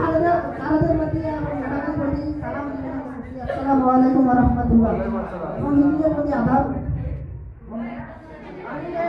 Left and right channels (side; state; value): both; identical; correlation 1.00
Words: প্রতি এবং ম্যাডামের প্রতি সালাম জানাচ্ছি। আসসালামু আলাইকুম ওয়া রাহমাতুল্লাহ। এবং হিন্দুদের প্রতি আদাব।